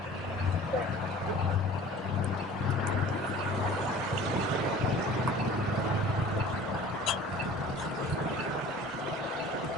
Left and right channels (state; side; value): normal; both; correlation 0.45